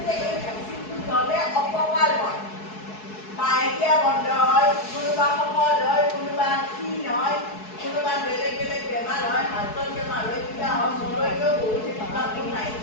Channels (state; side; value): late; right; 4.7 ms